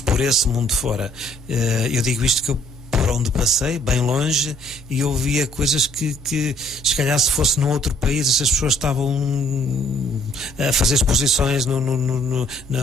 Por esse mundo fora. Eu digo isto que eu por onde passei, bem longe, e eu via coisas que se calhar se fosse num outro país, essas pessoas estavam a fazer exposições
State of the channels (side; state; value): both; normal; correlation 0.62